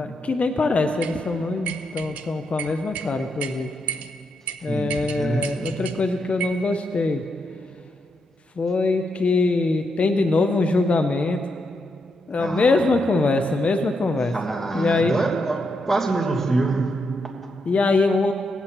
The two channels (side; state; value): both; normal; correlation 0.81